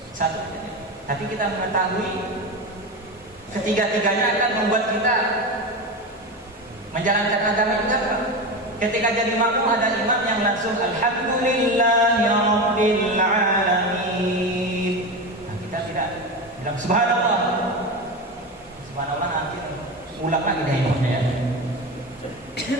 Satu, tapi kita mengetahui ketiga-tiganya akan membuat kita menjalankan agama kita. Ketika jadi makmum ada imam yang langsung Alhamdulillahirabbil alamin. Nah, kita tidak bilang subhanallah. Subhanallah nanti ulang lagi dari imamnya ya.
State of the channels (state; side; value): normal; both; correlation 0.21